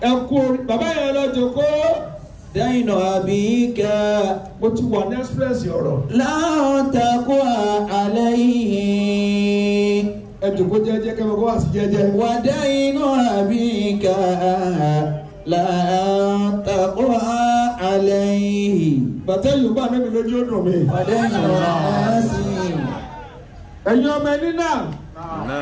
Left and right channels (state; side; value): identical; both; correlation 1.00